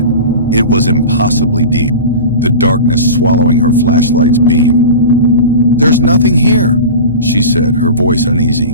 It was impossibly deep, the darkness swallowing her flashlight's beam. "There's nothing here," she said, her voice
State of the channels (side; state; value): both; inverted; correlation -0.32